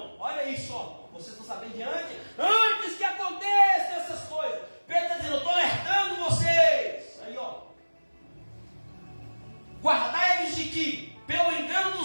olha isso, ó, vocês estão sabendo antes que aconteçam essas coisas. Pedro está dizendo: eu estou alertando vocês. Aí, ó, guardai-vos de que, pelo engano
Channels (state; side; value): inverted; both; correlation -1.00